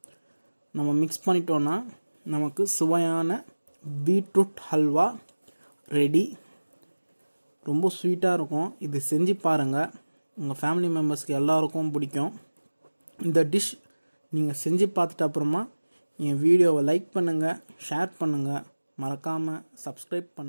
நம்ம மிக்ஸ் பண்ணிட்டோன்னா நமக்கு சுவையான பீட்ரூட் ஹல்வா ரெடி. ரொம்ப ஸ்வீட்டாக இருக்கும். இது செஞ்சு பாருங்கள், உங்கள் ஃபேமிலி மெம்பர்ஸ்க்கு எல்லாருக்கும் பிடிக்கும். இந்த டிஷ் நீங்கள் செஞ்சு பார்த்துட்டு அப்புறமா என் வீடியோவை லைக் பண்ணுங்கள், ஷேர் பண்ணுங்கள், மறக்காமல் சப்ஸ்கிரைப்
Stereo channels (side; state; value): both; inverted; correlation -1.00